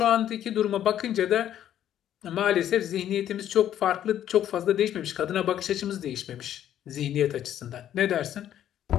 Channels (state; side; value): quieter; right; 11.0 dB